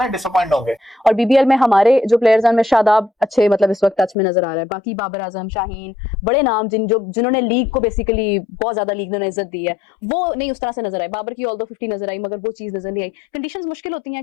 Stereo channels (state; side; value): drops out; right; at 4.2 s